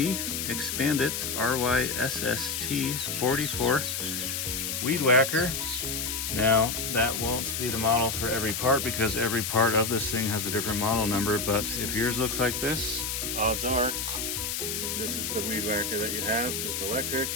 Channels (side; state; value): left; noise; hiss, 2 dB below the sound